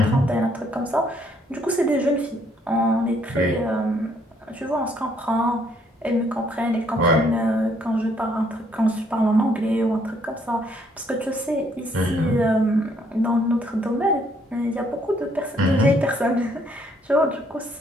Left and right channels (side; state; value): both; normal; correlation 0.67